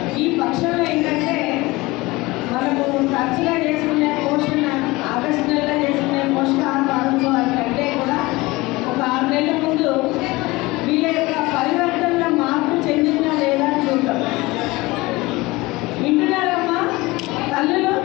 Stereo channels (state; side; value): quieter; right; 21.6 dB